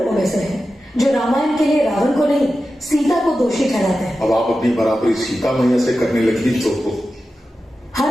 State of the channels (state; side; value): normal; both; correlation 0.92